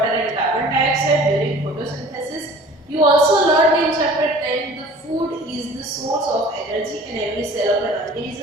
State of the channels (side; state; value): both; normal; correlation 0.46